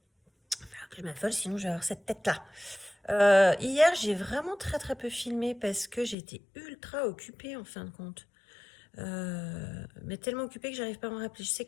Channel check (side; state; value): right; drops out; at 6.2 s